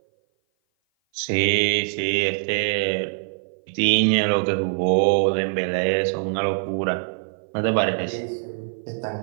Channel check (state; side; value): silent; left; 57 dB below the other